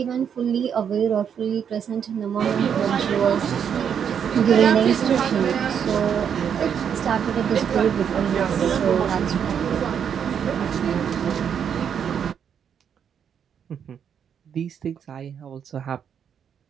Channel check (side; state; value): left; quieter; 8.0 dB